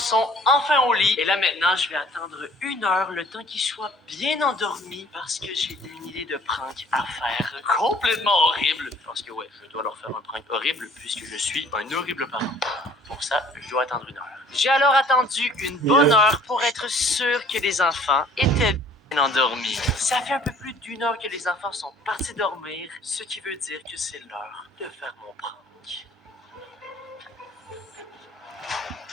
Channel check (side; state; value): both; normal; correlation 0.54